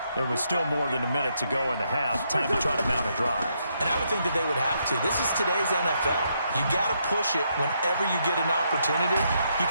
There was still more than a minute to go in the half. Time to try to mount a drive. And I would think that they would have to. This is today's NFL. You got to push it whenever you get an opportunity. You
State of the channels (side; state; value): both; inverted; correlation -0.77